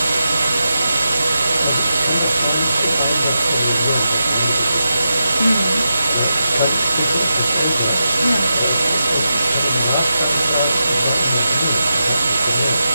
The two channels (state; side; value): inverted; both; correlation -0.88